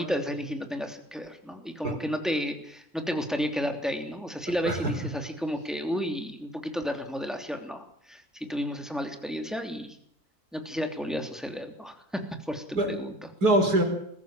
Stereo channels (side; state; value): both; normal; correlation 0.52